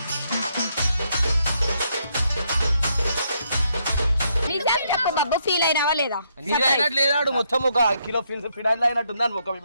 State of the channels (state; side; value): inverted; both; correlation -0.75